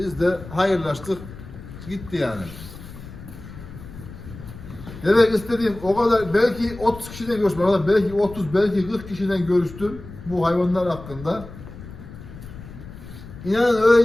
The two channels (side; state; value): left; noise; rumble, 15 dB below the sound